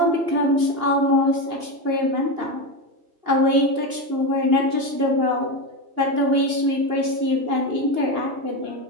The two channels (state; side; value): late; left; 2.8 ms